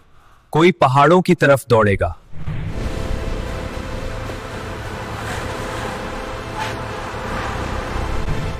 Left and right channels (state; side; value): identical; both; correlation 1.00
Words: कोई पहाड़ों की तरफ दौड़ेगा।